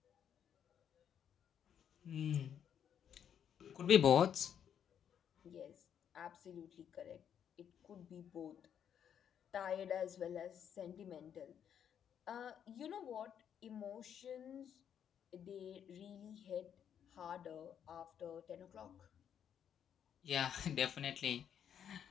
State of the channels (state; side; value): quieter; right; 8.8 dB